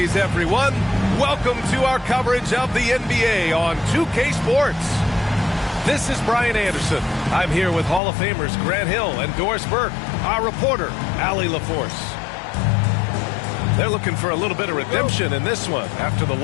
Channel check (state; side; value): drops out; right; at 8.0 s